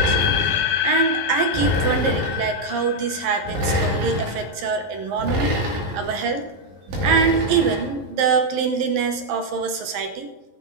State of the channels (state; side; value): late; left; 11 ms